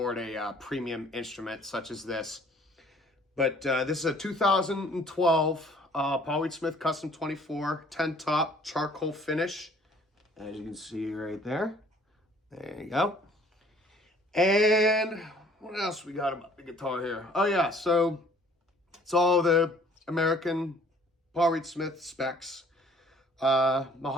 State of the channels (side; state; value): both; normal; correlation 0.56